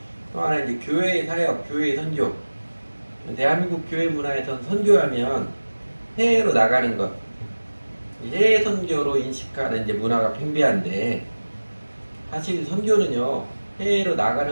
또 하나 이제 교회의 사역, 교회의 선교. 대한민국 교회 문화에선 선교하면 해외로 나가는 것, 해외 선교로 인식하는 이제 문화가 팽배한데, 사실 선교는요 해외로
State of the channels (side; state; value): both; inverted; correlation -1.00